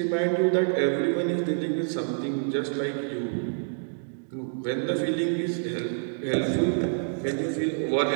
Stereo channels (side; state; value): left; silent; digital silence